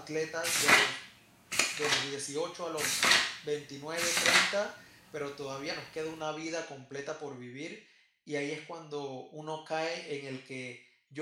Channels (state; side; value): identical; both; correlation 1.00